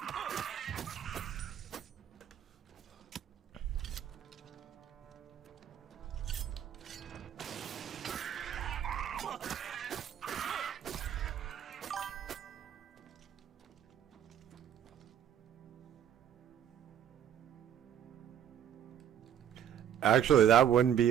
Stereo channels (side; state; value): left; quieter; 9.6 dB